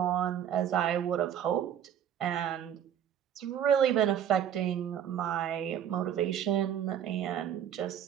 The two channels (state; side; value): quieter; left; 9.6 dB